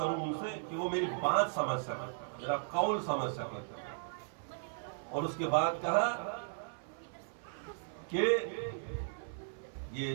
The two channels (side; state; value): left; silent; 53 dB below the other